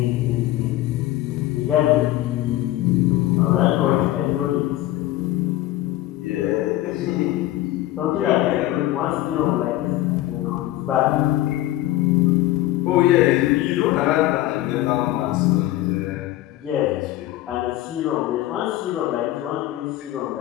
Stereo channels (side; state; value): right; quieter; 15.4 dB